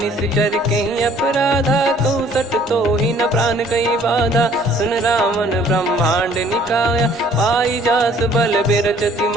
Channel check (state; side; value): normal; both; correlation 0.57